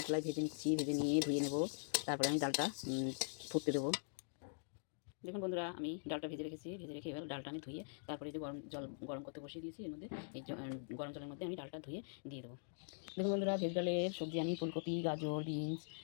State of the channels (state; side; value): silent; right; digital silence